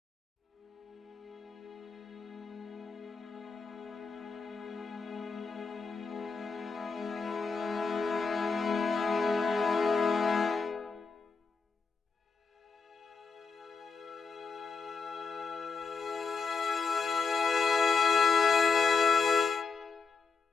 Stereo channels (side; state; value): right; quieter; 4.9 dB